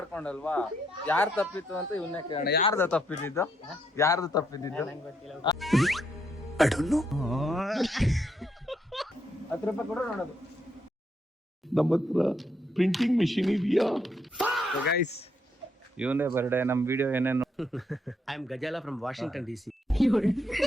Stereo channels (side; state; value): both; normal; correlation 0.75